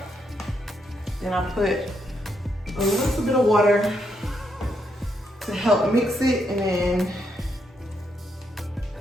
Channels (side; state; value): both; normal; correlation 0.78